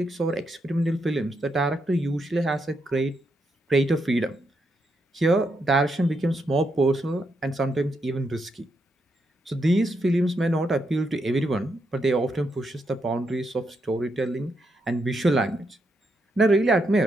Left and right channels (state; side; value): normal; both; correlation 0.80